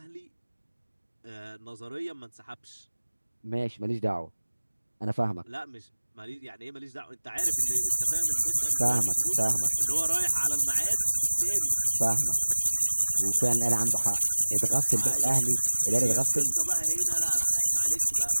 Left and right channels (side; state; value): both; inverted; correlation -1.00